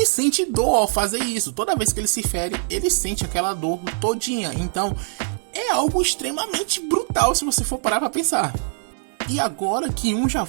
sente dor ao fazer isso. Toda vez que ele se fere, ele sente aquela dor todinha. Então é algo extremamente brutal se você for parar pra pensar. E agora que um já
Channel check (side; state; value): left; silent; digital silence